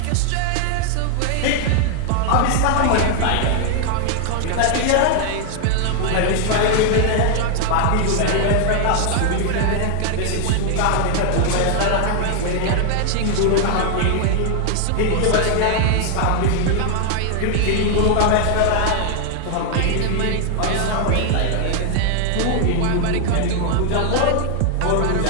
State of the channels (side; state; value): both; different; correlation 0.00